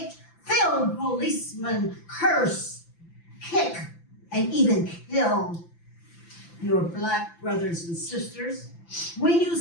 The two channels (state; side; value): late; right; 5.9 ms